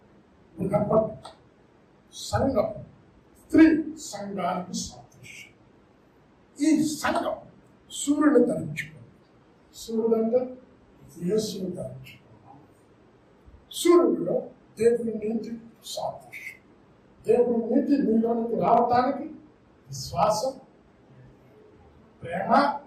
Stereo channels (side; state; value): both; identical; correlation 1.00